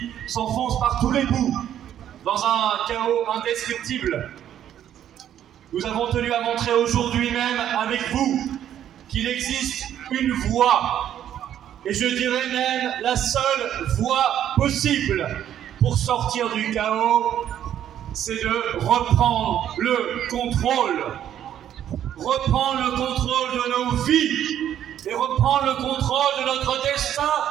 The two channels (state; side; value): quieter; left; 10.6 dB